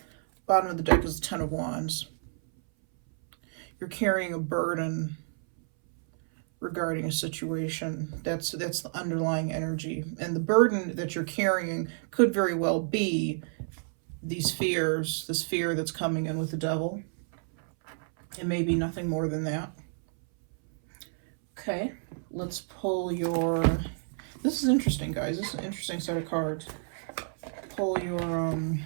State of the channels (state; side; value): silent; left; 58 dB below the other